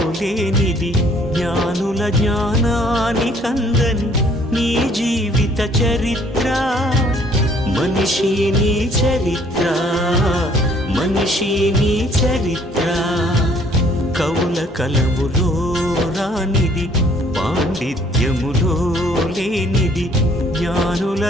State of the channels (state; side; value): normal; both; correlation 0.61